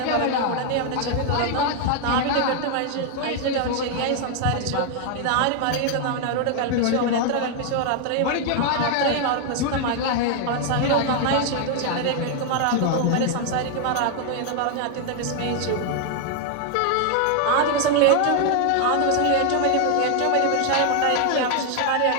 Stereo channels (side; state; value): both; different; correlation 0.00